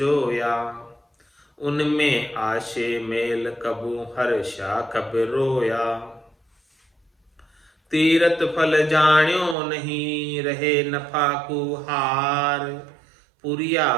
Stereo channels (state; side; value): drops out; left; at 9.6 s